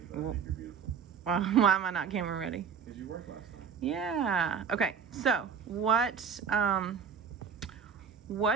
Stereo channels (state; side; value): quieter; left; 6.7 dB